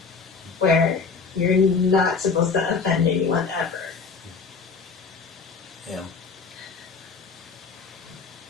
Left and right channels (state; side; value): quieter; right; 5.0 dB